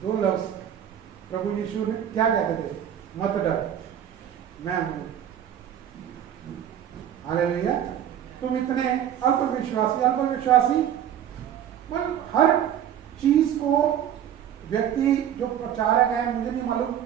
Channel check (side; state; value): left; quieter; 10.1 dB